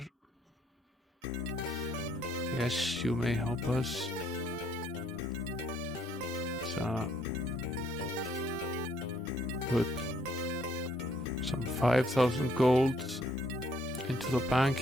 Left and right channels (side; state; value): both; normal; correlation 0.67